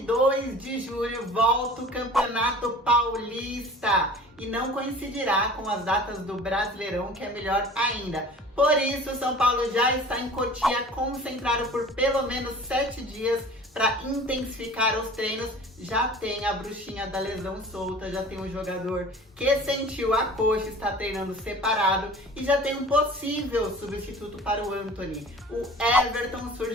de julho volta o Campeonato Paulista e não coincidirá com as datas do Brasileirão, que é melhor ainda. Por isso, o São Paulo já está em Cotia, concentrado por pelo menos 7 dias para intensificar os treinos. Já tem a bruxinha da lesão solta, já tem um jogador que sentiu a coxa, está treinando separado e já tem um possível substituto para o Antony. O Everton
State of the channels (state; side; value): normal; both; correlation 0.43